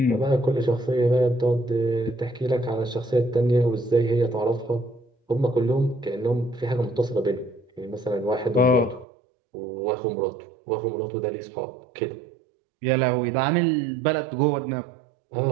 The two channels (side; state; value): left; drops out; at 9.1 s